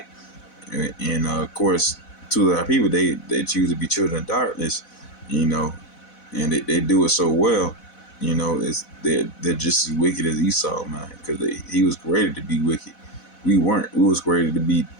and of course, to our people, they choose to be children of darkness, and they do it so well. They're just as wicked as Esau, man, because he was created to be wicked. We weren't. We was created to be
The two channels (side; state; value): right; late; 4.1 ms